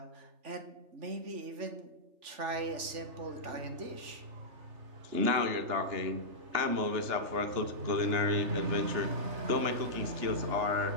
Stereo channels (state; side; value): late; left; 3.5 ms